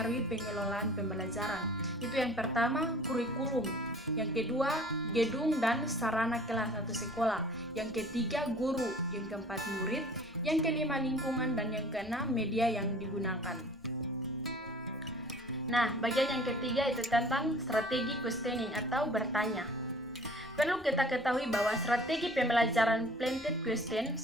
pengelolaan pembelajaran. Itu yang pertama, kurikulum. Yang kedua, gedung dan sarana kelas atau sekolah. Yang ketiga, guru. Yang keempat, murid. Yang kelima, lingkungan. Dan yang keenam, media yang digunakan. Nah, bagian yang ketiga itu tentang strategi questioning atau bertanya. Perlu kita ketahui bahwa strategi pembelajaran planted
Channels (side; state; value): both; normal; correlation 0.48